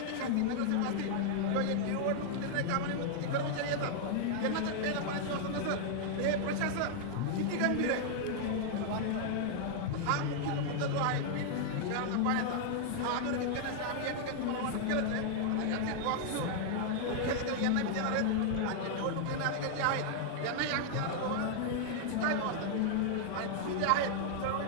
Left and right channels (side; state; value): both; different; correlation -0.01